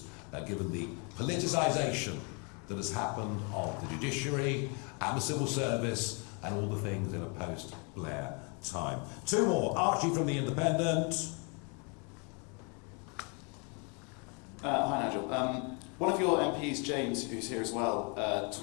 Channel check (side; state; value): right; quieter; 34.7 dB